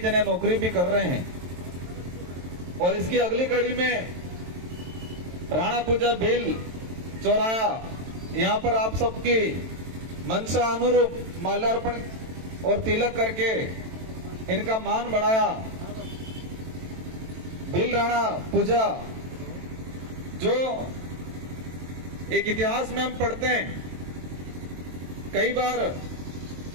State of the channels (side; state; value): left; late; 23 ms